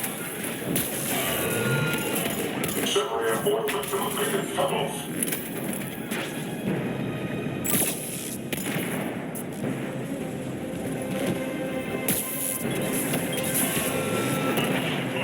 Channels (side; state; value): both; identical; correlation 1.00